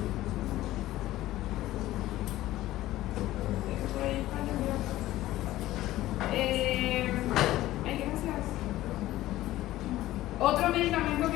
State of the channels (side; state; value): right; quieter; 15.6 dB